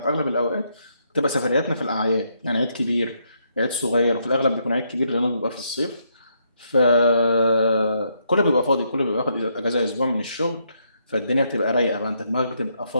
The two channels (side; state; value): both; inverted; correlation -0.76